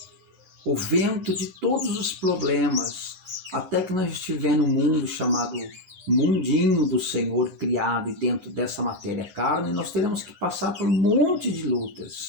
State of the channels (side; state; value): left; late; 9.8 ms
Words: O vento de todos os problemas, até que nós estivermos no mundo chamado mundinho do Senhor criado e dentro dessa matéria carne, nós teremos que passar por um monte de